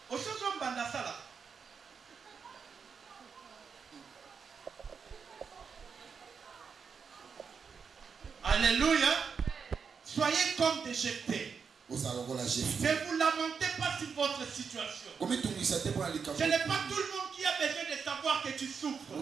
Au sens où on bande ça là. Alléluia. Soyez comme des Jephthé. Ne vous lamentez pas sur votre situation. Ce n'est pas tout le monde qui a besoin de savoir que tu souffres.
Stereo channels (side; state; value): left; quieter; 6.0 dB